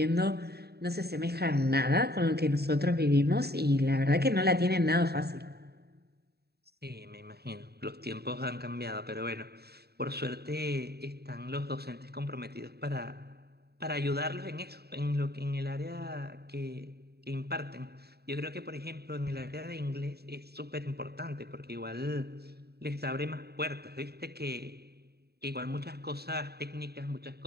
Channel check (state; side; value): late; left; 0.47 ms